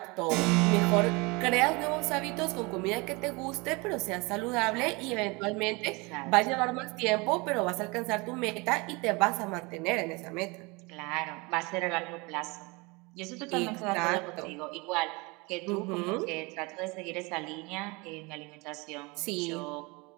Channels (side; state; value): left; quieter; 26.6 dB